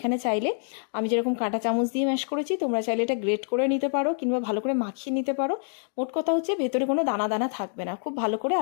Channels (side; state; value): right; silent; digital silence